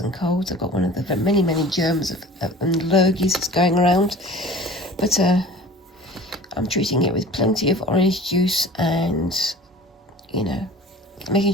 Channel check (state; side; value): normal; both; correlation 0.42